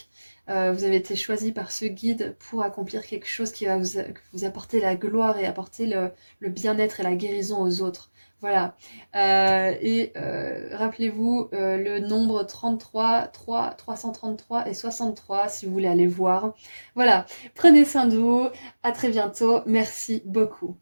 Vous avez été choisi par ce guide pour accomplir quelque chose qui va vous apporter la gloire et apporter le bien-être et la guérison aux autres. Voilà. Rappelez-vous le nombre 33, 333 et 63 si vous voulez aller voir. Voilà. Prenez soin de vous. À très bientôt. Merci beaucoup.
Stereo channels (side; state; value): both; inverted; correlation -1.00